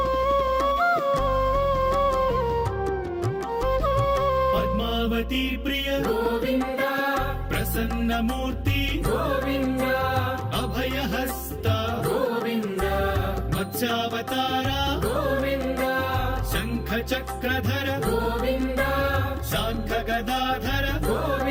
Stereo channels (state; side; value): identical; both; correlation 1.00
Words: పద్మావతి ప్రియ గోవింద ప్రసన్నమూర్తి గోవింద అభయహస్త గోవింద మత్స్యావతార గోవింద శంఖ చక్రధర గోవింద శాంఖ గదాధర